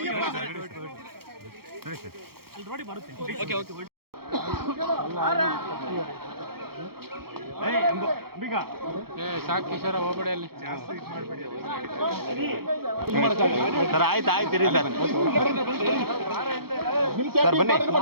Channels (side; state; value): left; late; 0.94 ms